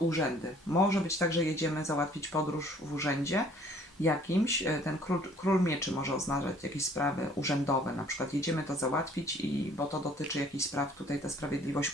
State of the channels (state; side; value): normal; both; correlation 0.57